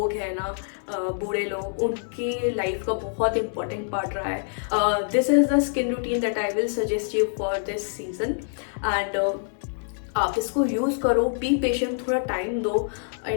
हैं ना, बूढ़े लोग, उनकी लाइफ का बहुत इंपॉर्टेंट पार्ट रहा है। This is the skin routine that I will suggest you for this season and आप इसको यूज़ करो, बी पेशेंट, थोड़ा टाइम दो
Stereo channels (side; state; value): right; silent; 61 dB below the other